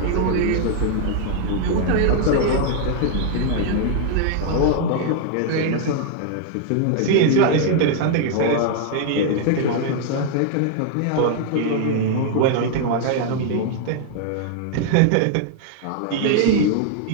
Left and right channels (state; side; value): different; both; correlation 0.00